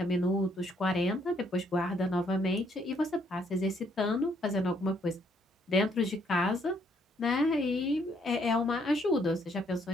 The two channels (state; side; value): normal; both; correlation 0.69